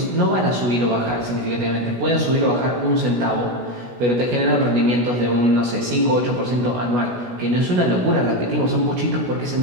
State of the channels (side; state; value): left; late; 16 ms